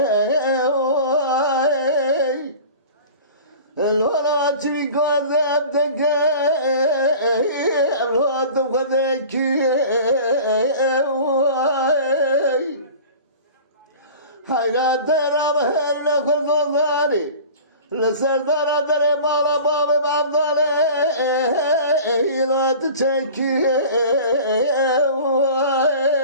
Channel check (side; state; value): both; inverted; correlation -0.40